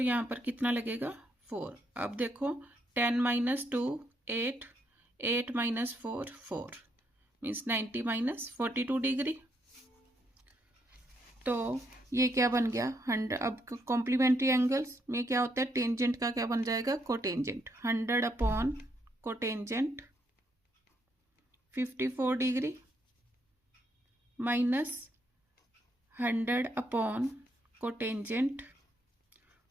पर कितना लगेगा 4। अब देखो 10 minus 2 8 8 minus 4 4, means 90 minus 42 degree. तो ये क्या बन गया 100। अब कॉम्प्लीमेंट्री एंगल्स में क्या होता है, टेंजेंट का क्या बन जाएगा, cotangent. 100 upon cotangent 54 degree minus 100 upon cotangent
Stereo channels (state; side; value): normal; both; correlation 0.75